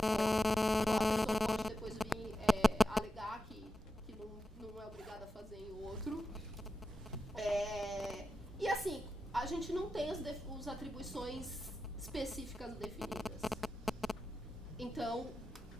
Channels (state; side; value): normal; both; correlation 0.90